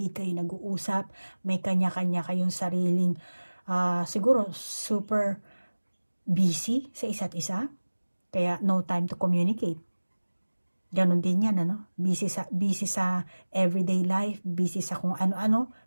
kayo nag-uusap, may kanya-kanya kayong sariling, siguro super busy sa isa't isa, kaya no time to communicate. Ganon din yan, busy sa everyday life, busy sa kung ano-ano,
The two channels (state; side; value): inverted; both; correlation -1.00